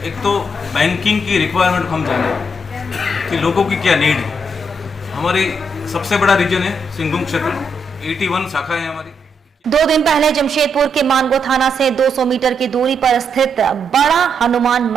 एक तो बैंकिंग की रिक्वायरमेंट को हम जानें कि लोगों की क्या नीड है। हमारी सबसे बड़ा रीजन है सिंहभूम क्षेत्र, 81 शाखा है हमारी। 2 दिन पहले जमशेदपुर के मानगो थाना से 200 मीटर की दूरी पर स्थित बड़ा हनुमान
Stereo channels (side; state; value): both; normal; correlation 0.78